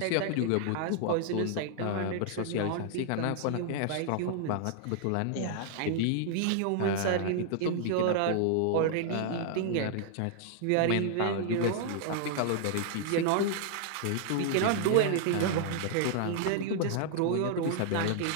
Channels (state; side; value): different; both; correlation 0.00